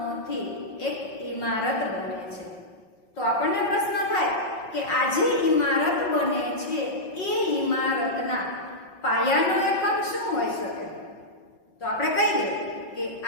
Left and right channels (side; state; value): right; late; 5.5 ms